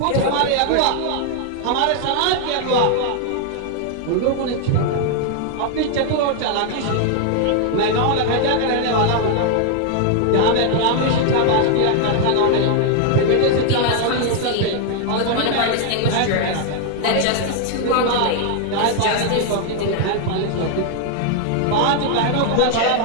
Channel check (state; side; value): different; both; correlation 0.00